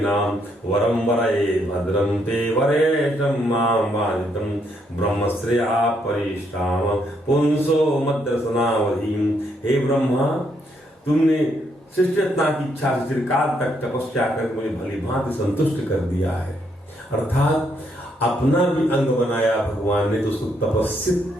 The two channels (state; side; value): normal; both; correlation 0.74